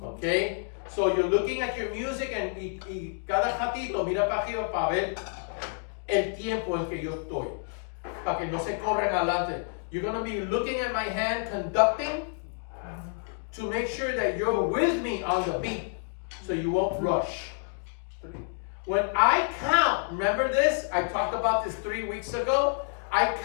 Okay? So you're looking at your music and y cada ratito mira para arriba para ver el tiempo en que yo estoy. Para que no se corran adelante. You're going to be looking at my hand conducting to make sure that you're with me on the beat so you won't rush. When I count, remember this? I talked about this 3 weeks ago. I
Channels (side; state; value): right; silent; 59 dB below the other